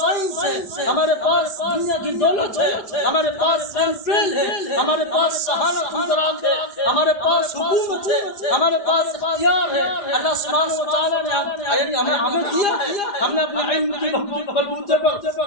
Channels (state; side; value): late; right; 4.9 ms